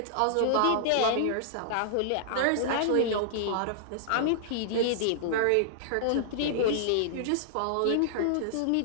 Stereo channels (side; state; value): both; different; correlation -0.01